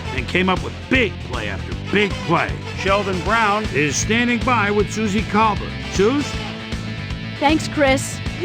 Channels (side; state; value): both; identical; correlation 1.00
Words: and came up with big play after big play. Sheldon Brown is standing by with Susie Colbert. Suze? Thanks, Chris.